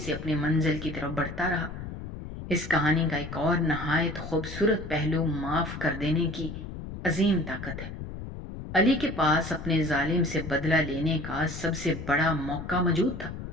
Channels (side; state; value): left; noise; rumble, 9 dB below the sound